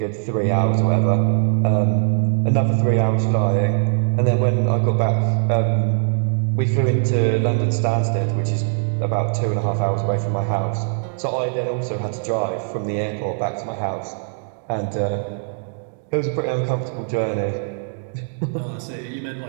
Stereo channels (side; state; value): left; silent; digital silence